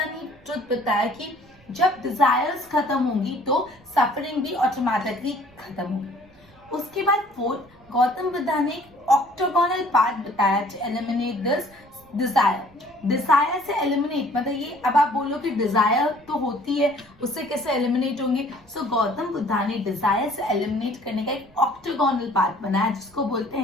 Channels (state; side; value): noise; right; rumble, 28 dB below the sound